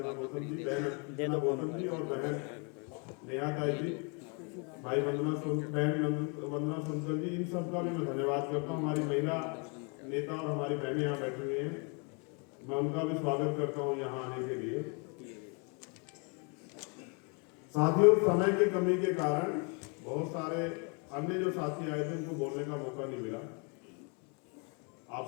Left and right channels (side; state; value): right; quieter; 35.0 dB